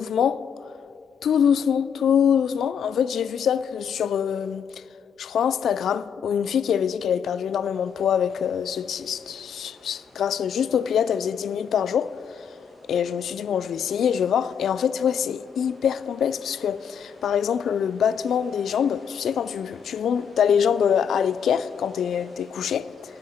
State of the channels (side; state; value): right; quieter; 7.7 dB